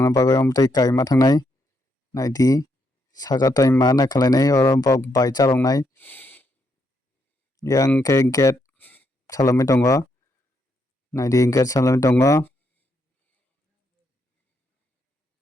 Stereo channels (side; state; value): both; normal; correlation 0.77